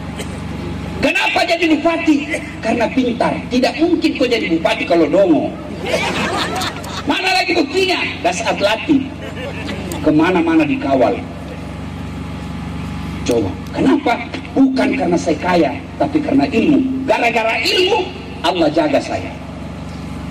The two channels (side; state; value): both; identical; correlation 1.00